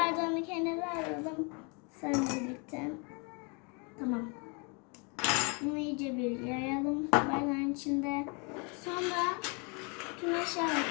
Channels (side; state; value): right; quieter; 33.5 dB